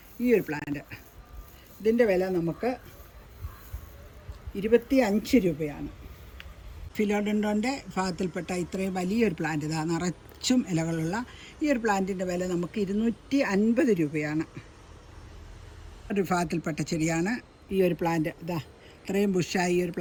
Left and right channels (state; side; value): identical; both; correlation 1.00